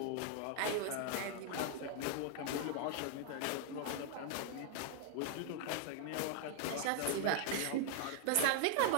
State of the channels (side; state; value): both; different; correlation 0.00